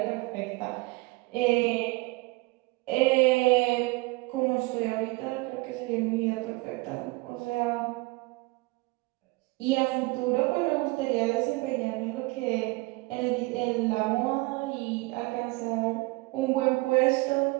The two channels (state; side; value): quieter; left; 23.8 dB